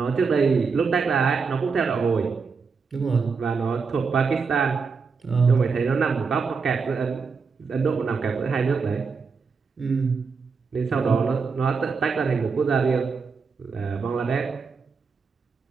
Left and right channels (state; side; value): quieter; left; 5.2 dB